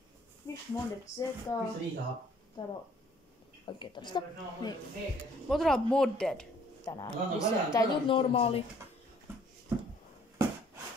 Fish modded zeta. Täällä on oikein tällaista. Niin. Me otetaan modded tänään. Missä tää ei tuu normaali.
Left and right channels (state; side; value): normal; both; correlation 0.60